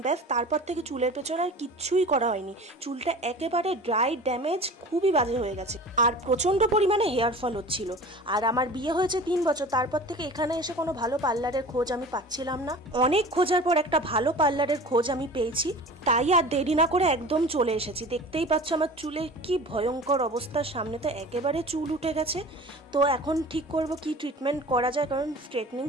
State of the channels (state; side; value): normal; both; correlation 0.39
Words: ব্যাস তারপর থেকে চুলের পেছনে আর কিচ্ছুই করা হয়নি। চুলটা একেবারে ড্রাই, ড্যামেজ, খুবই বাজে হয়ে গেছে আর প্রচণ্ড পরিমাণে হেয়ার ফল হচ্ছিল। আর আমার বিয়ে হয়েছে 3 বছর, তারপর থেকে এখানে এসে কোনো ভালো পার্লারের খোঁজ আমি পাচ্ছিলাম না। অনেক খোঁজার পর একটা ভালো পার্লারের খোঁজ আমি পেয়েছি, তাই আর দেরি না করে একদম চলে এসেছি। দেখতেই পাচ্ছ আমার চুলের কি ভয়ঙ্কর অবস্থা, সামনে তো একেবারে চুল উঠে গেছে। তো এখন ঠিক করব কি ট্রিটমেন্ট করা যায়, কারণ স্ট্রেটনিং